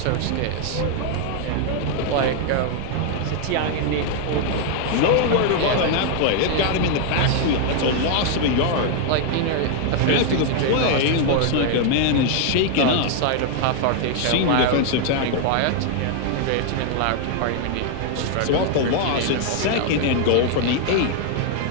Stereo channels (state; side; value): different; both; correlation 0.00